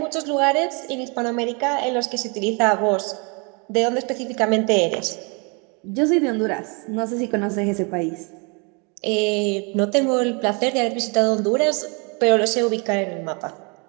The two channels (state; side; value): quieter; left; 33.1 dB